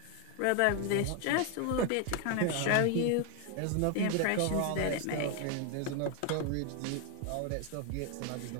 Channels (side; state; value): both; different; correlation 0.01